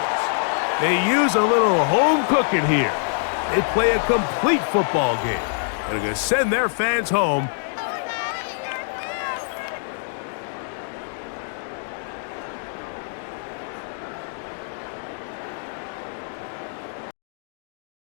They use a little home cooking here. They play a complete football game. And are going to send their fans home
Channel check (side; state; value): right; silent; digital silence